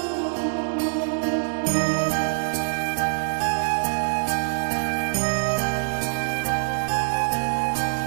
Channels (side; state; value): left; silent; digital silence